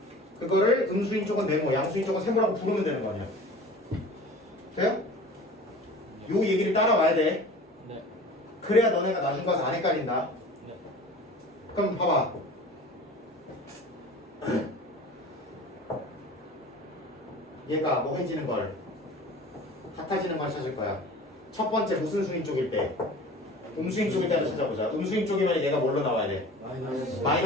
그거를 음수인 쪽은 네모, 양수인 쪽은 세모라고 부르면 되는 거 아니야. 돼요? 요 얘기를 따라와야 돼. 네. 그래야 너네가 나중 가서 안 헷갈린다. 네. 그럼 봐봐. 얘가 뭐 해지는 걸 같아지는 걸 찾을 거야. 첫 번째 무슨 수인 쪽일 때? 음수인 쪽일 때 하나 찾아보자. 음수인 쪽이면 얘가 뭘로 나와야 돼?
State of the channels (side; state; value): both; normal; correlation 0.41